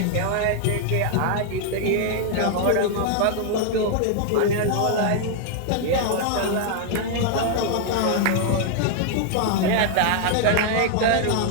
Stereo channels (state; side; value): different; both; correlation 0.00